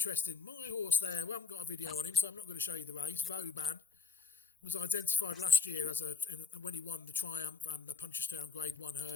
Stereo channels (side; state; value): right; quieter; 5.2 dB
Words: My horse there, we haven't got a video on him, so I'm not going to show you the race. Vauban was identified last year as when he won the Triumph and the Punchestown Grade 1